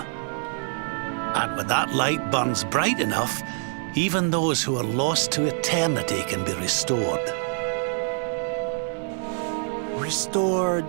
And when that light burns bright enough, even those who are lost to eternity can be restored. Restored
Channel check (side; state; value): left; silent; 57 dB below the other